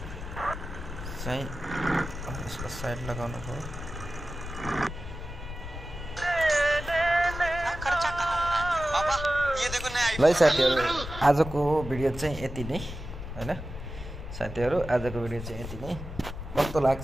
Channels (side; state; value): left; noise; rumble, 9 dB below the sound